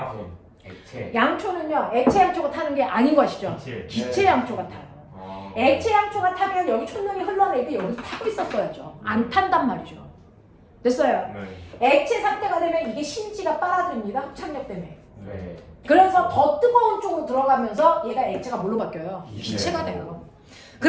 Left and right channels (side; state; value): both; identical; correlation 1.00